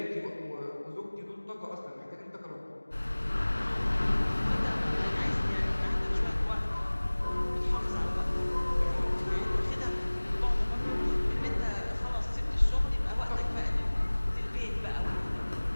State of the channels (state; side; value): inverted; both; correlation -1.00